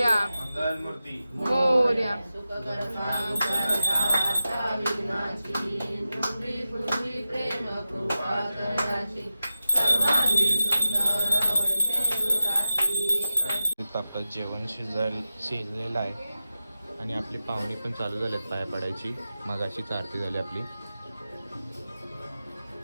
मंगलमूर्ती मोर्या. आपलं जेवण शिजलेलं आहे आणि आपली पाहुणी पण चालू झालेत पाया पडायची. मगाशीच आरती झाली आपली.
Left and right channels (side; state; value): both; inverted; correlation -0.91